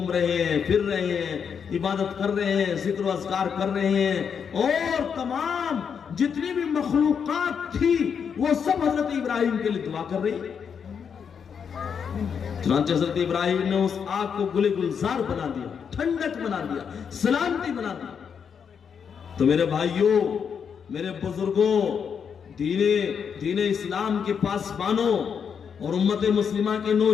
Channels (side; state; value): right; quieter; 7.0 dB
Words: رہے ہیں، پھر رہے ہیں، عبادت کر رہے ہیں، ذکر و اذکار کر رہے ہیں، اور تمام جتنی بھی مخلوقات تھی وہ سب حضرت ابراہیم کے لیے دعا کر رہی ہے۔ چنانچہ حضرت ابراہیم نے اس آگ کو گل گلزار بنا دیا، ٹھنڈک بنا دیا، سلامتی بنا دیا۔ تو میرے بھائیوں، میرے بزرگوں، دین اسلام کے پاسبانوں اور امت مسلمہ کے